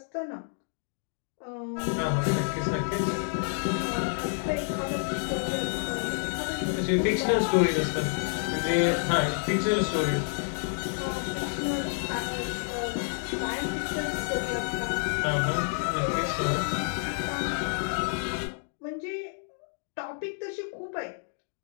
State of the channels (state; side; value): silent; right; digital silence